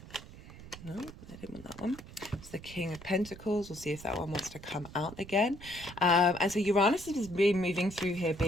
no, I didn't want that one. It's the King of Pentacles. We'll see if that one wants to come out again. And so Uranus is being moving through here,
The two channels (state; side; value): noise; right; rumble, 16 dB below the sound